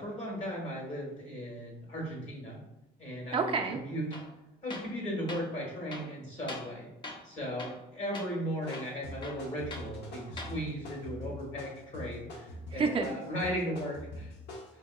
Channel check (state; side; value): normal; both; correlation 0.42